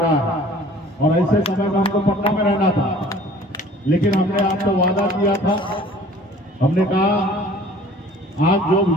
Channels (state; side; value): normal; both; correlation 0.50